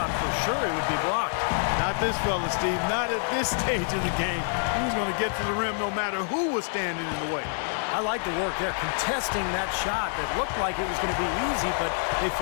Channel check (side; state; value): right; silent; 60 dB below the other